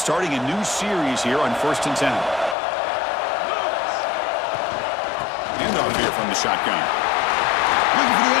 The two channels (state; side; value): drops out; right; at 2.6 s